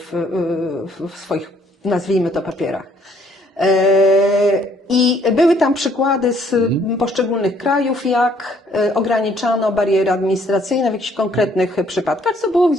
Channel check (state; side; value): normal; both; correlation 0.64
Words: w swoich, nazwijmy to, papierach. I były tam przykłady z poszczególnych krajów, jak ograniczano bariery administracyjne w jakichś konkretnych przypadkach, co było